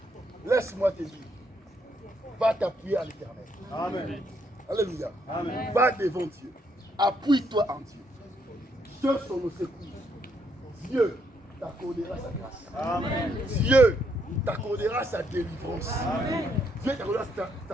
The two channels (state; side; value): normal; both; correlation 0.74